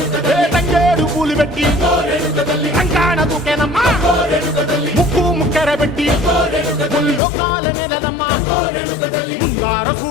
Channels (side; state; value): right; drops out; at 7.2 s